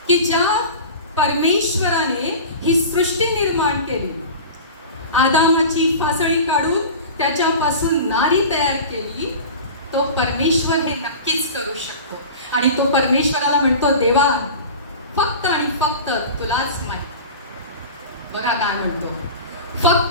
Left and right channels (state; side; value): inverted; both; correlation -0.34